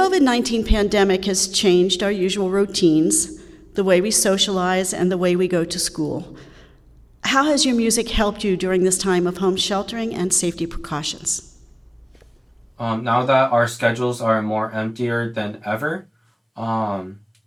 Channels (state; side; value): identical; both; correlation 1.00